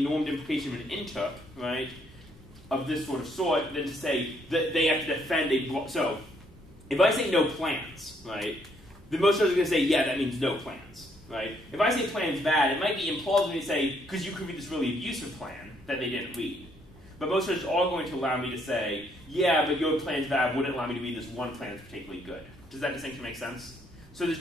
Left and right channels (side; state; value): both; normal; correlation 0.70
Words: implication of an interp, right, of this sort than to say that they have to defend a... So, if I say no plans, right, then most judges are going to say, yeah, that means no plans, right? If I say plan's bad, it might be implausible to say, because you could read this really abusive plan that they didn't read. But most judges are going to allow me to say, yeah, but your plan's bad wouldn't allow me to read this one plan that's particularly good. Does that distinction make sense? So there's